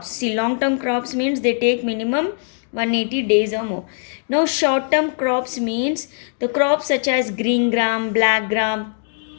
See, long term crops means they take minimum 180 days or more. Now short term crops means the crops such as green gram, black gram.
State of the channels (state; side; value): silent; right; digital silence